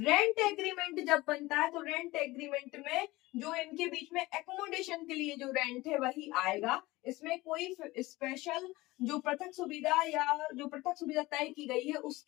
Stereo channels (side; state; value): right; quieter; 20.0 dB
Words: एग्रीमेंट जब बनता है तो रेंट एग्रीमेंट में जो इनके बीच में एकोमोडेशन के लिए जो रेंट है वही आएगा। इसमें कोई स्पेशल जो पृथक सुविधा या जो पृथक सुविधा तय की गई है